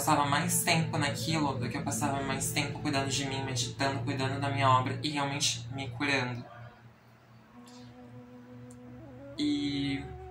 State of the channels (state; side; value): identical; both; correlation 1.00